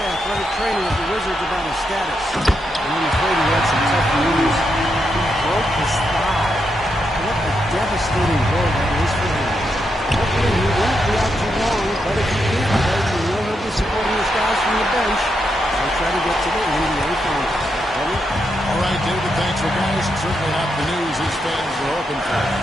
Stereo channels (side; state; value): both; normal; correlation 0.82